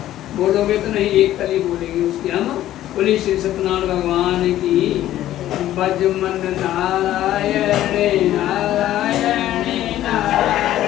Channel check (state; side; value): quieter; right; 13.3 dB